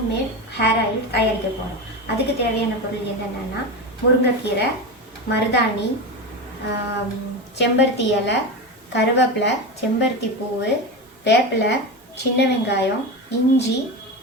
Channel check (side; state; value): both; normal; correlation 0.21